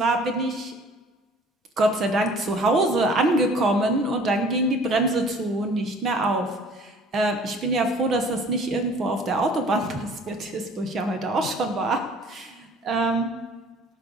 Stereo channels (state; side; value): normal; both; correlation 0.51